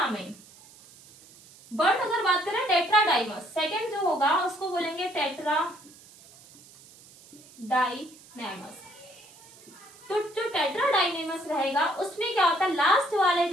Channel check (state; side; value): noise; right; hiss, 23 dB below the sound